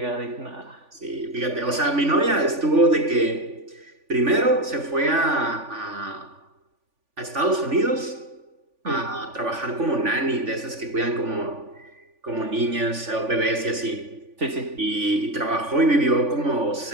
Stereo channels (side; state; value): left; late; 3.5 ms